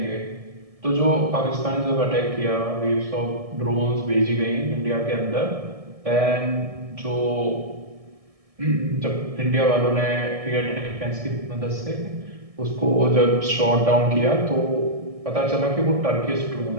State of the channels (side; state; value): left; late; 1.6 ms